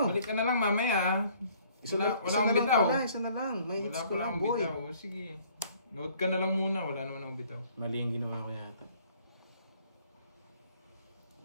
Balik ka na lang mamaya. Isa Wala na akong lang bitaw. pala, isa na lang. May Wala hits ko pa lang, akong boy. bitaw. Sige. Note ka na lang muna. Wala naman akong bitaw. Mali yung ginawa ko yata.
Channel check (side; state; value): both; inverted; correlation -0.59